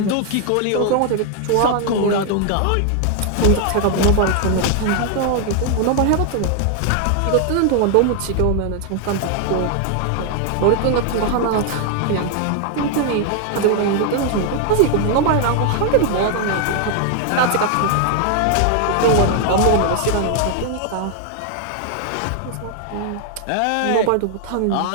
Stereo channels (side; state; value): both; different; correlation 0.00